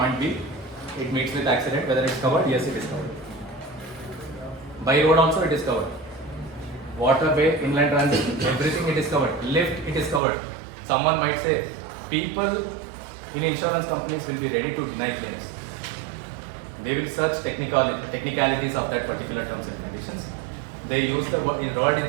B, it meets with accident, whether it's covered, yes it is covered. By road also it is covered. Waterway, inland transit, everything it is covered. Lift, it is covered. Someone might say, people in insurance companies will be ready to deny claims. They will search technicalities of that particular terms and conditions. They use the word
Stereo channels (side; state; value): left; drops out; at 10.2 s